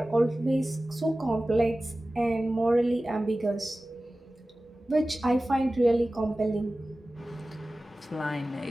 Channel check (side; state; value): both; normal; correlation 0.96